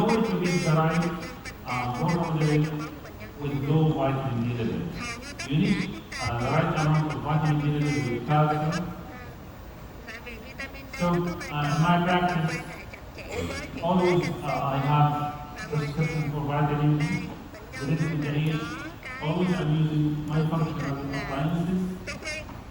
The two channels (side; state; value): both; identical; correlation 1.00